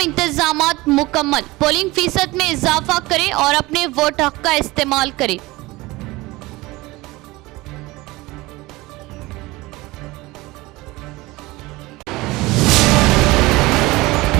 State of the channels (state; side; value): quieter; left; 20.9 dB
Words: इंतजामात मुकम्मल। पोलिंग फीसद में इजाफा करें और अपने वोट हक का इस्तेमाल करें।